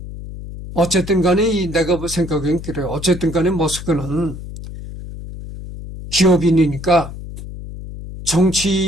어쨌든 간에 내가 생각엔 그래요. 어쨌든 간에 머스크는 기업인이니까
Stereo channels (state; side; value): noise; left; hum, 11 dB below the sound